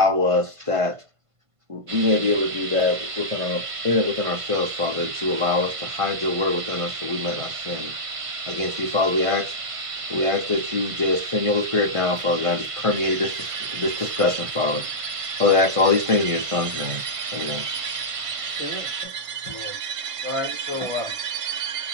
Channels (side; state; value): left; late; 1.5 ms